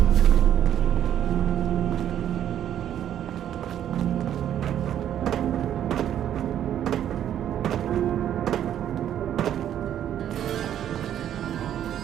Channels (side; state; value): left; quieter; 10.5 dB